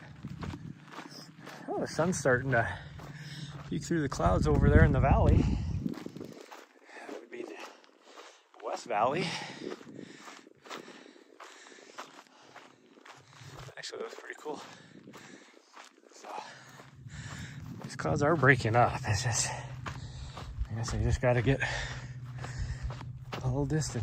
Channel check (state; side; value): identical; both; correlation 1.00